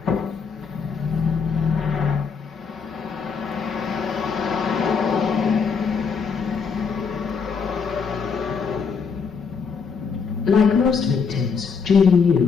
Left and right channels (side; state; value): right; quieter; 5.7 dB